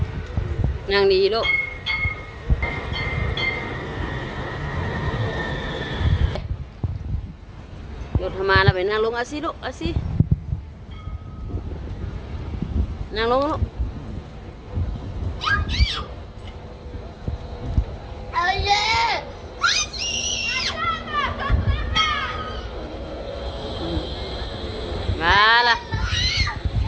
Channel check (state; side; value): identical; both; correlation 1.00